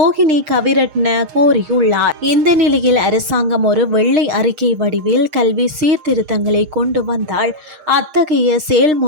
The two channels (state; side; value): late; left; 6.5 ms